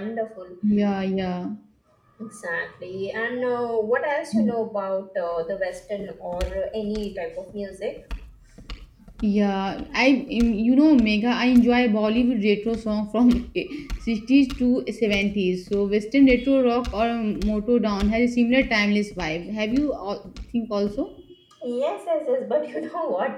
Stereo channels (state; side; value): identical; both; correlation 1.00